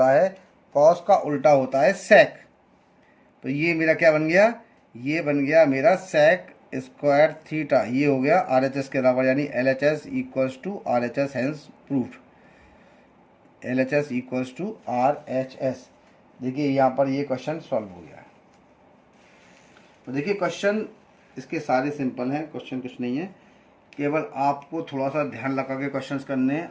है, कॉस का उल्टा होता है सेक। तो ये मेरा क्या बन गया, ये बन गया मेरा सेक स्क्वायर थीटा। ये हो गया RHS के बराबर, यानी LHS equals to RHS, hence proof. LHS equals to RHS। देखिए यहाँ पर ये क्वेश्चन सॉल्व हो गया। तो देखिए क्वेश्चन इसके सारे सिंपल हैं, क्वेश्चन कुछ नहीं है, केवल आपको थोड़ा सा ध्यान लगा के क्वेश्चंस करने हैं।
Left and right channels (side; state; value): both; identical; correlation 1.00